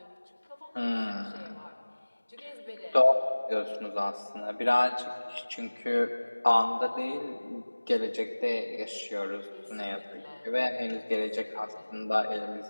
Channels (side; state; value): both; inverted; correlation -1.00